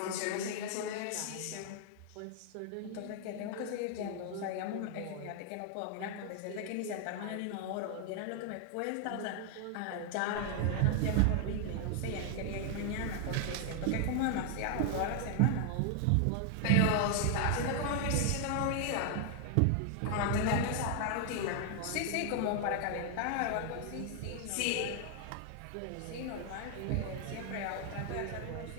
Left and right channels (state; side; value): different; both; correlation 0.00